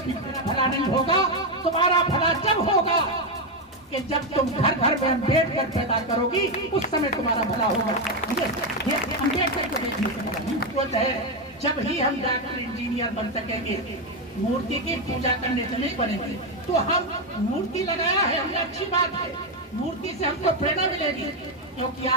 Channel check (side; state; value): both; normal; correlation 0.07